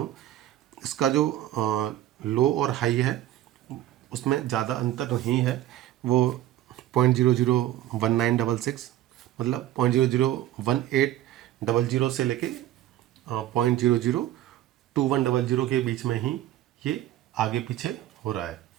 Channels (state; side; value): quieter; left; 13.4 dB